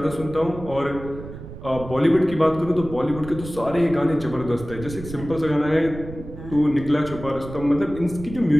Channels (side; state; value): right; noise; rumble, 12 dB below the sound